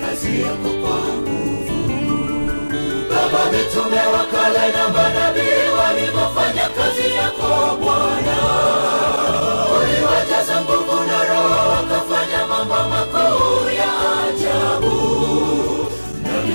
kazi yako kwa nguvu. Baba, mitume wa kale na manabii walivyofanya kazi yako Bwana, uliwajaza nguvu na Roho, wakafanya mambo makuu ya ajabu.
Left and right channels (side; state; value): both; inverted; correlation -1.00